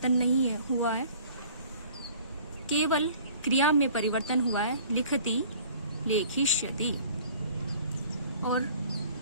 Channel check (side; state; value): both; inverted; correlation -0.51